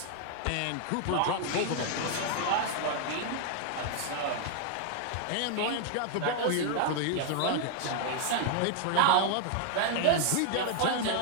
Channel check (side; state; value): both; different; correlation 0.00